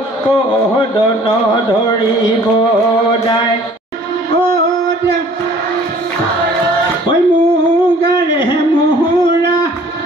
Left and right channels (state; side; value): normal; both; correlation 0.53